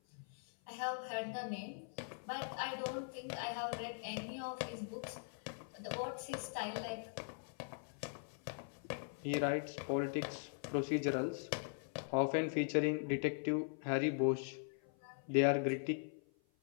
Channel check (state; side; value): silent; right; 50 dB below the other